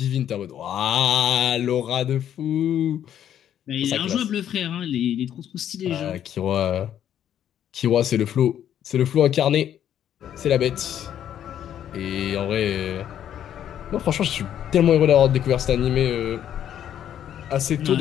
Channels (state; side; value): quieter; right; 10.2 dB